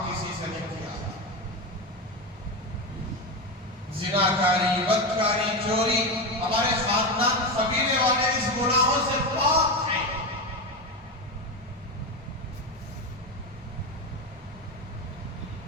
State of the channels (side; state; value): both; normal; correlation 0.16